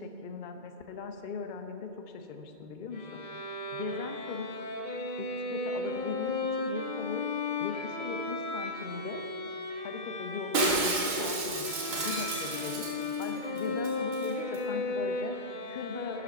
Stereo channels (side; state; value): left; late; 2.2 ms